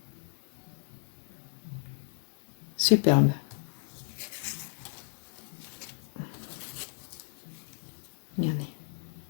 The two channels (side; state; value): right; silent; digital silence